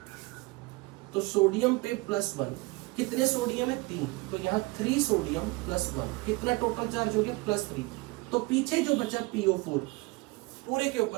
तो सोडियम पे +1, कितने सोडियम है, 3, तो यहाँ 3 सोडियम +1, कितना टोटल चार्ज हो गया, +3। तो पीछे जो बचा PO4 पूरे के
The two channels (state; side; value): quieter; left; 23.9 dB